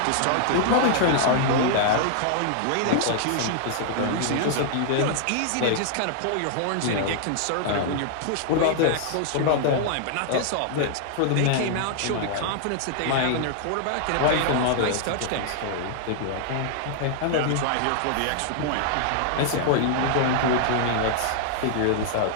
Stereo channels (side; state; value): both; different; correlation -0.01